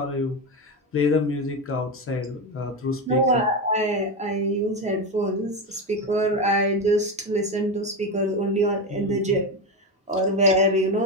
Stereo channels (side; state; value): both; normal; correlation 0.15